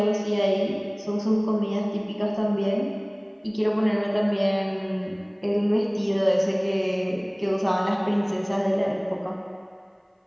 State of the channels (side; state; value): both; identical; correlation 1.00